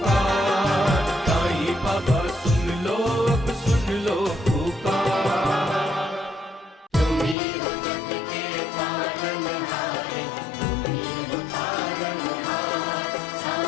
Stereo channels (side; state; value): right; drops out; at 7.4 s